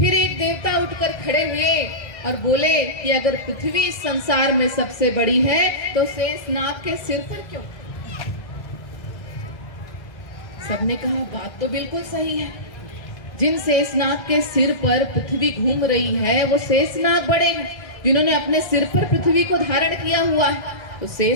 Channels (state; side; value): late; right; 2.0 ms